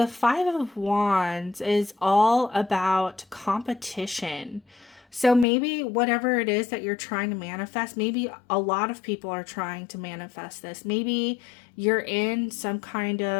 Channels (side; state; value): right; drops out; at 5.5 s